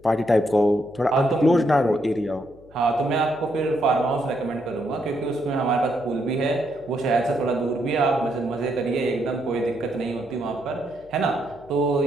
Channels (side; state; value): left; noise; hum, 25 dB below the sound